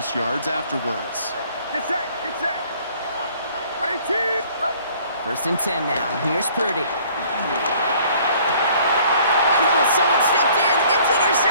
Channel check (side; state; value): both; inverted; correlation -0.57